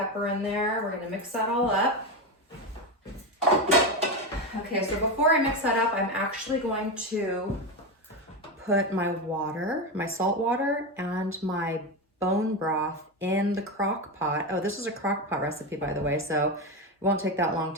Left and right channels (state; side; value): normal; both; correlation 0.15